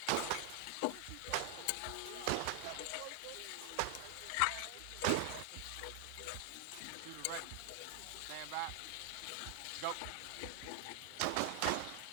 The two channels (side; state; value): both; different; correlation 0.00